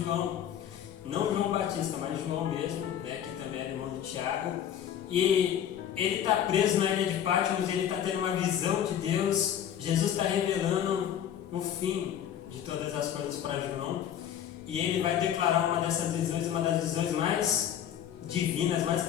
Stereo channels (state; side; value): quieter; right; 9.8 dB